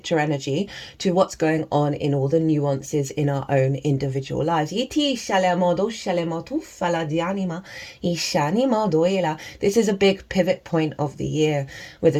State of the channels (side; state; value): both; identical; correlation 1.00